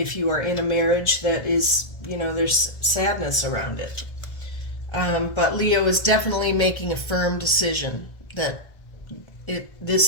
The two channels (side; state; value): right; late; 1.7 ms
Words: you are in a marriage that is, there's sadness around it. But Leo is definitely making a firm decision that